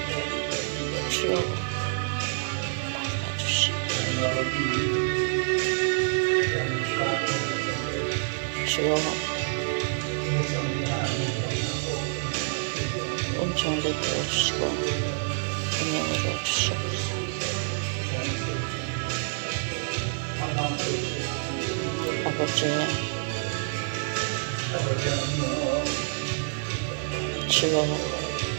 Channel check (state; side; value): silent; left; digital silence